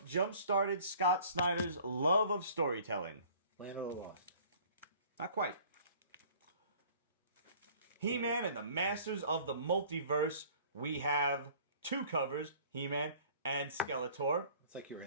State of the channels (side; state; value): both; inverted; correlation -0.51